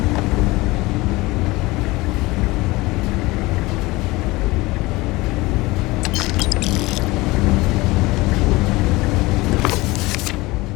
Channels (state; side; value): quieter; right; 21.4 dB